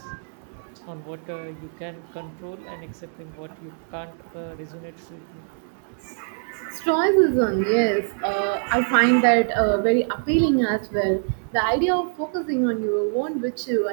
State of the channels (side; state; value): left; silent; digital silence